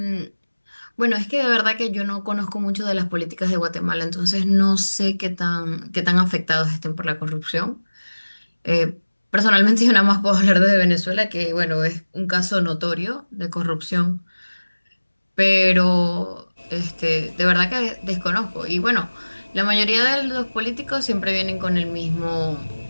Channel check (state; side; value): inverted; both; correlation -1.00